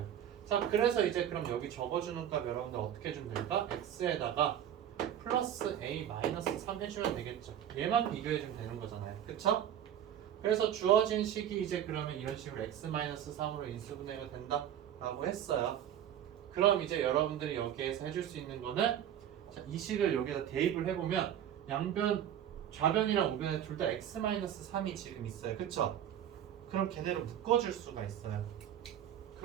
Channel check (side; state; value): left; quieter; 10.3 dB